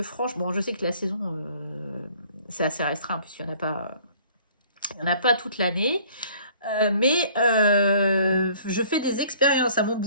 franchement, je sais que la saison, c'est assez restreint, puisqu'il n'y en a pas toute l'année. Mais je fais des expériences à mon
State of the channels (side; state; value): both; inverted; correlation -0.55